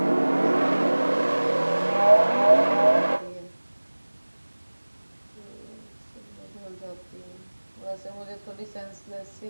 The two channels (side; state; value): both; inverted; correlation -1.00